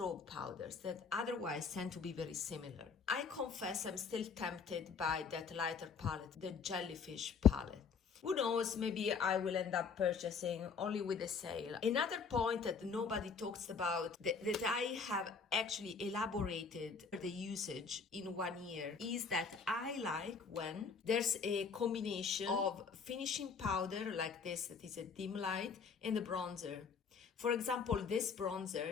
powders that otherwise tend to be very similar. I confess I'm still tempted by that lighter palette, the Jellyfish palette. Who knows, maybe I will end up purchasing only with a sale. Another point that nobody talks about, that I have actually elaborated the usage in 1 year, is that I like when there's a combination of finishing powder like this, that is a dim light, and the bronzer. For example, this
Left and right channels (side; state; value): right; quieter; 5.5 dB